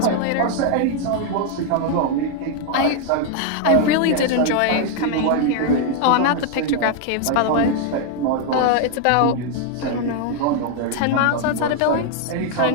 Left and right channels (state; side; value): different; both; correlation 0.00